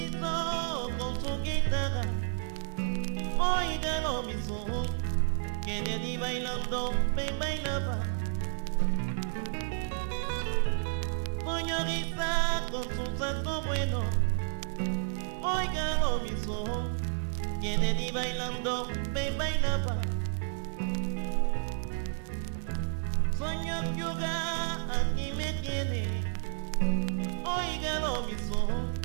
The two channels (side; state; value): left; silent; digital silence